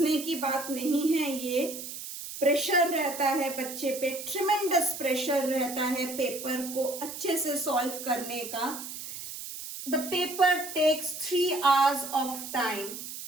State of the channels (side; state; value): right; noise; hiss, 9 dB below the sound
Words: की बात नहीं है, ये प्रेशर रहता है बच्चे पे, ट्रिमेंडस प्रेशर रहता है पेपर को अच्छे से सॉल्व करने का। The paper takes 3 hours of time.